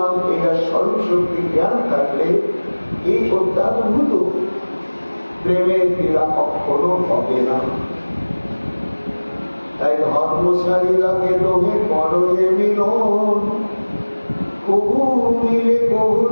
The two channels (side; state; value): both; inverted; correlation -1.00